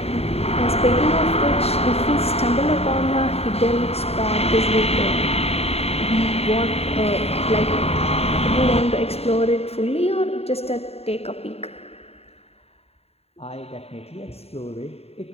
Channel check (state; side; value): late; right; 0.29 ms